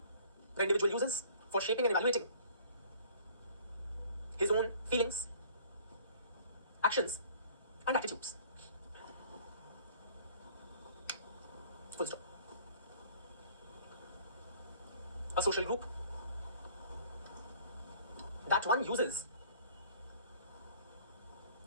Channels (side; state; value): both; inverted; correlation -0.52